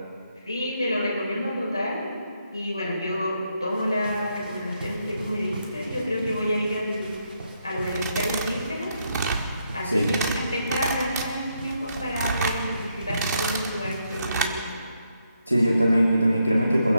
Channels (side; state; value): both; inverted; correlation -0.78